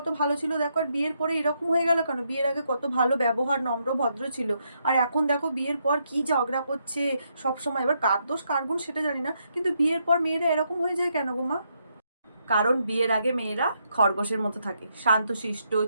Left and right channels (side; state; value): both; inverted; correlation -0.78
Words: ভালো ছিল দেখো, আর বিয়ের পরে এরকম হয়ে গেল কেন? বিয়ের আগে কত ভালো ব্যবহার, নম্র ভদ্র ছিল, আর এখন দেখো বিয়ের পর কি ঝগড়া করছে সব সময়। এবার কার দোষ কার গুণ সেটা জানি না, কিন্তু বিয়ের পর মেয়েরা এরকম হয়ে যায় কেন গো মা? কারণ বিয়ের আগে মেয়েরা খরগোশের মতো থাকে, শান্তশিষ্ট,